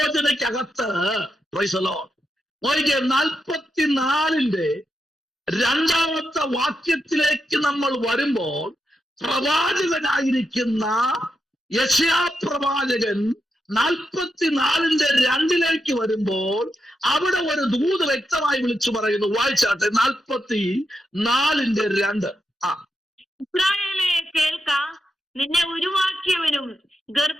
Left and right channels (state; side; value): normal; both; correlation 0.85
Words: പ്രൈസ് ദി ലോർഡ്. 44-ന്റെ 2-ാമത്തെ വാക്യത്തിലേക്ക് നമ്മൾ വരുമ്പോൾ പ്രവാചകനായിരിക്കുന്ന യെശയ്യാ പ്രവാചകൻ 44:2 വരുമ്പോൾ അവിടെ ഒരു ദൂത് വ്യക്തമായി വിളിച്ചു പറയുന്നു. വായിച്ചാട്ടെ, 44:2. ഇസ്രായേലേ കേൾക്ക, നിന്നെ ഉരുവാക്കിയവനും